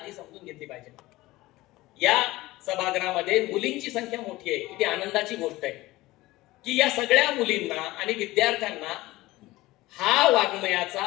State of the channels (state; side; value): quieter; right; 18.6 dB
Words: समजून घेतली पाहिजे. या सभागृहामध्ये मुलींची संख्या मोठी आहे, किती आनंदाची गोष्ट आहे की या सगळ्या मुलींना आणि विद्यार्थ्यांना हा